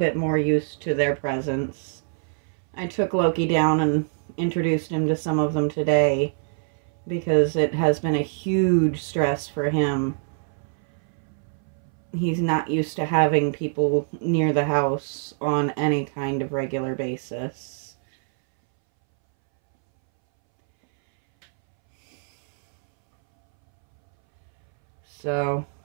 more used to their presence. I took Loki down and introduced him to some of them today because it has been a huge stress for him. He's not used to having people near the house on any kind of regular basis. So,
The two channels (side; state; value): left; silent; 62 dB below the other